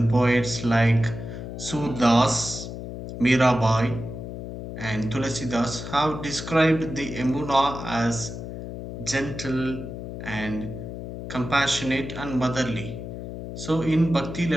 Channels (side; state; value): left; noise; hum, 8 dB below the sound